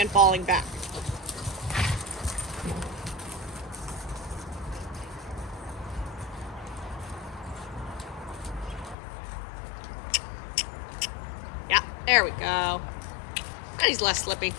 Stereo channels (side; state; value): right; drops out; at 9.0 s